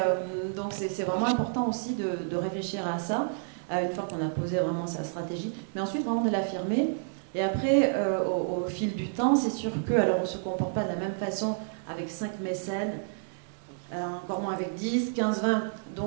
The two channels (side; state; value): left; silent; digital silence